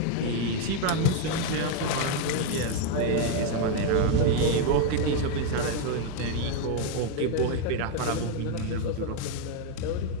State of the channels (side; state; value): both; different; correlation 0.01